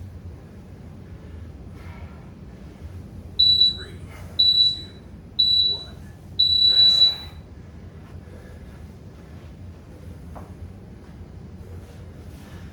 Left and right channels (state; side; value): identical; both; correlation 1.00